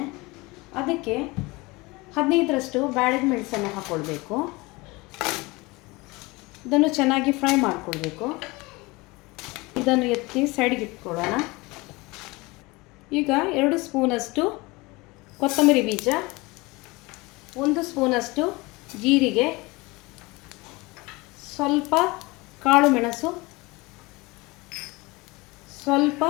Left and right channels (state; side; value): quieter; right; 23.6 dB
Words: ಅದಕ್ಕೆ 15ರಷ್ಟು ಬ್ಯಾಡಗಿ ಮೆಣಸನ್ನು ಹಾಕ್ಕೊಳ್ಬೇಕು. ಇದನ್ನು ಚೆನ್ನಾಗಿ ಫ್ರೈ ಮಾಡಿಕೊಳ್ಬೇಕು. ಇದನ್ನು ಎತ್ತಿ ಸೈಡ್ಗೆ ಇಟ್ಕೊಳ್ಳೋಣ. ಈಗ 2 ಸ್ಪೂನಷ್ಟು ಕೊತ್ತಂಬರಿ ಬೀಜ, 1 ಸ್ಪೂನಷ್ಟು ಜೀರಿಗೆ, ಸ್ವಲ್ಪ ಕಾಳು ಮೆಣಸು, ಸ್ವಲ್ಪ